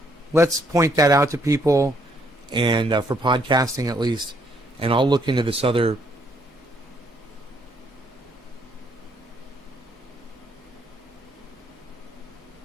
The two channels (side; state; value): both; normal; correlation 0.70